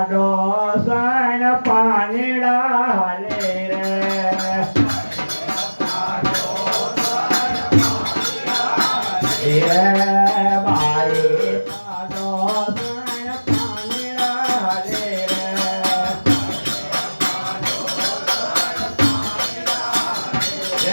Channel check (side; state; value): both; inverted; correlation -1.00